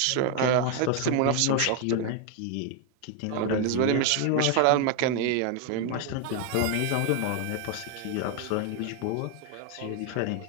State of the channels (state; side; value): different; both; correlation 0.01